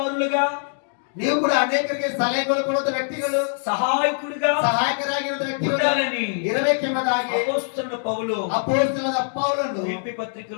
ನೀವು ಕೂಡ ಅನೇಕರಿಗೆ ಸಲಹೆಗಳು ಕೊಡುವ ವ್ಯಕ್ತಿಗಳು, సహాయకుడిగా ಸಹಾಯಕರಾಗಿರುವ ವ್ಯಕ್ತಿಗಳು ఉండాలని ಇರಬೇಕೆಂಬುದಾಗಿ అపొస్తలుడు పౌలు ಅಪೊಸ್ತಲನಾದ ಪೌಲನು ఫిలిప్పీ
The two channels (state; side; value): silent; right; digital silence